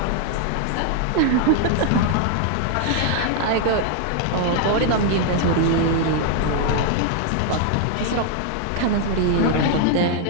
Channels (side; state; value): both; different; correlation 0.00